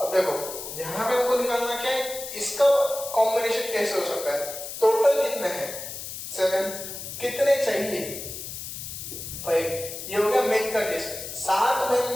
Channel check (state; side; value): noise; left; hiss, 9 dB below the sound